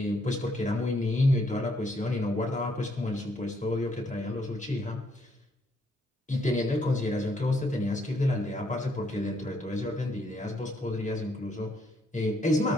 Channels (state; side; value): normal; both; correlation 0.71